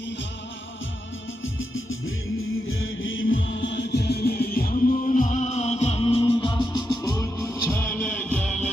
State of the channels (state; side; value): normal; both; correlation 0.85